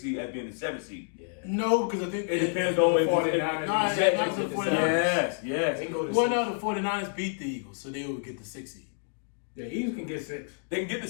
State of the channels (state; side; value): silent; right; digital silence